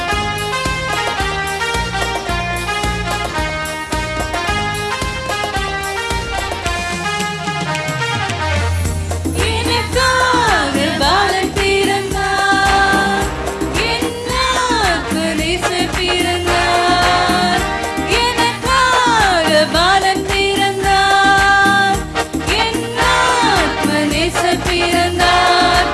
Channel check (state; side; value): identical; both; correlation 1.00